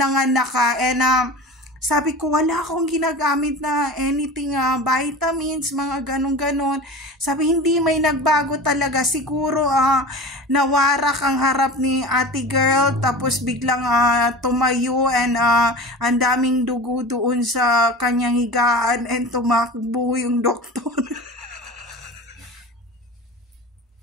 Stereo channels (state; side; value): normal; both; correlation 0.33